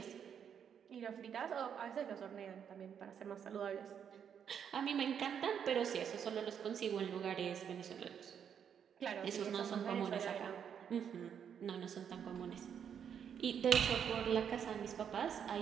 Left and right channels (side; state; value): left; quieter; 8.1 dB